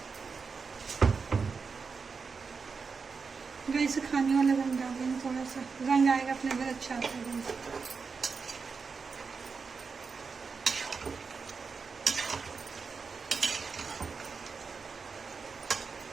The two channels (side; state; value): left; quieter; 5.1 dB